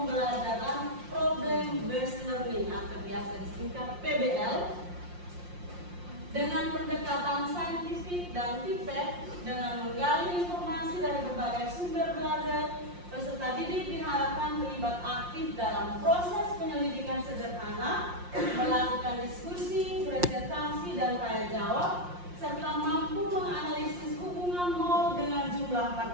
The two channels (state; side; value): late; left; 5.6 ms